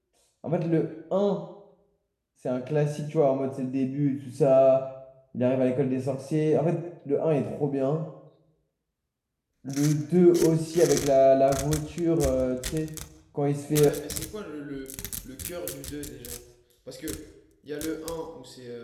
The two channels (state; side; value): identical; both; correlation 1.00